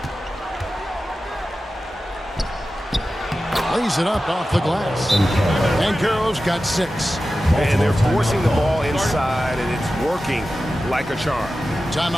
Lays it up off the glass. Banchero's got 6. And they're forcing the ball inside, and it's working like a charm.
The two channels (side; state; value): both; normal; correlation 0.94